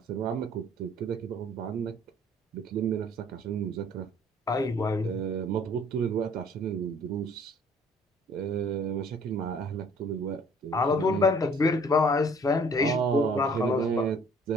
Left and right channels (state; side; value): normal; both; correlation 0.56